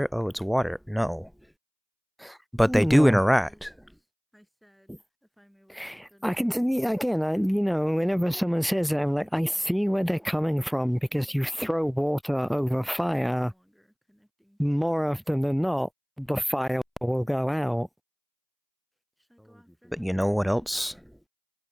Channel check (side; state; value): both; identical; correlation 1.00